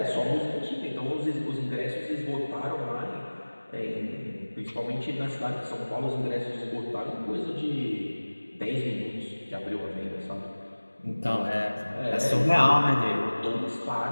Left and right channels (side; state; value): both; inverted; correlation -1.00